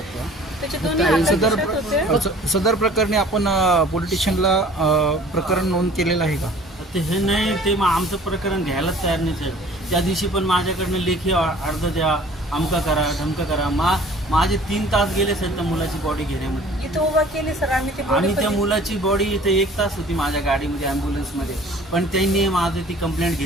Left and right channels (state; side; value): normal; both; correlation 0.49